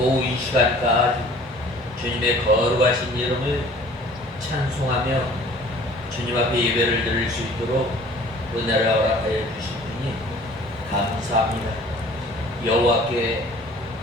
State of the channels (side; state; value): both; normal; correlation 0.50